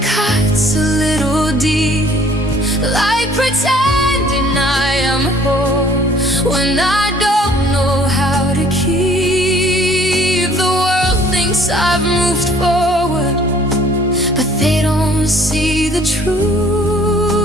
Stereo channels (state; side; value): normal; both; correlation 0.57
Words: cuts a little deep, like pretending I am whole when I don't know how to keep. I've moved forward, but they don't see the truth.